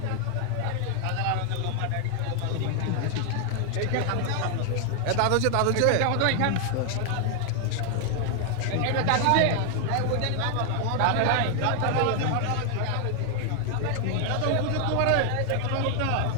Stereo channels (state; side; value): different; both; correlation 0.00